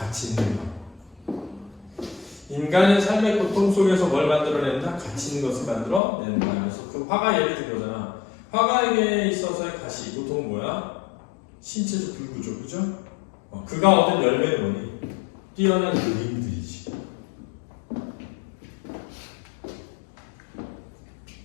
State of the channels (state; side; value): drops out; right; at 6.0 s